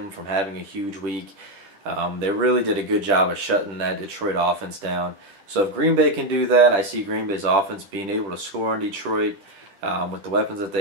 from having a huge week. They really did a good job of shutting that Detroit offense down. So if Green Bay can do that, I see Green Bay's offense being able to score on Detroit with the weapons that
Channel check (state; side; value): late; left; 10 ms